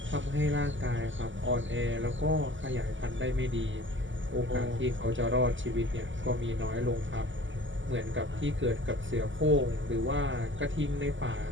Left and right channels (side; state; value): left; late; 0.55 ms